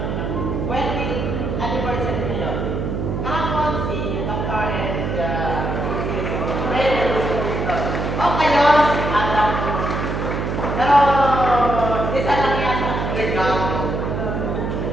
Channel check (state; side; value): noise; right; hum, 2 dB below the sound